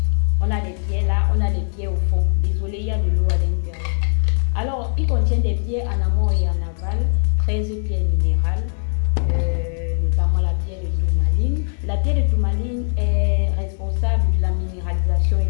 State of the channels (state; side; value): silent; right; digital silence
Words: On a des pierres là, on a des pierres au fond. Désolé, il y a de l'eau à l'intérieur. Alors, il contient des pierres en amont et en aval, 13 pierres minérales, notamment la pierre de tourmaline. La pierre de tourmaline est responsable de la minéralisation et